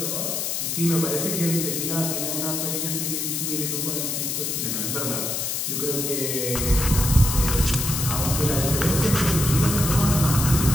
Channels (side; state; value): left; noise; hiss, 1 dB below the sound